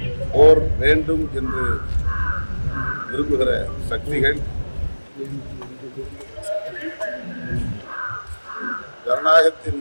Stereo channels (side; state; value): both; inverted; correlation -1.00